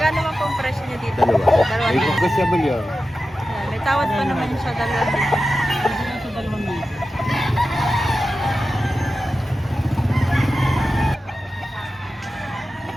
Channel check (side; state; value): both; normal; correlation 0.93